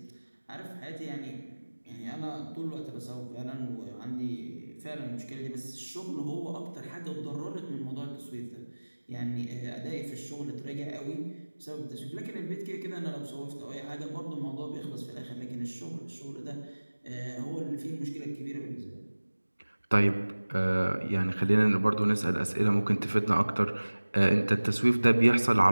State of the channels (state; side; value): inverted; both; correlation -1.00